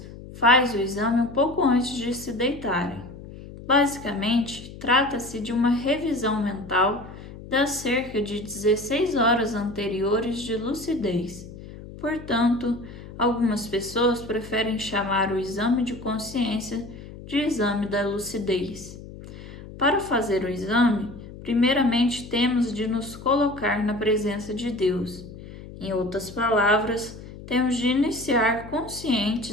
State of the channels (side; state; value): left; noise; hum, 15 dB below the sound